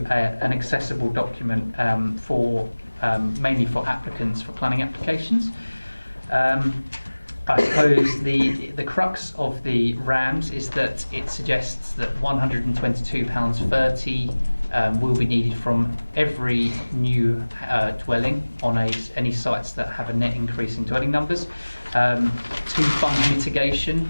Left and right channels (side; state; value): both; inverted; correlation -1.00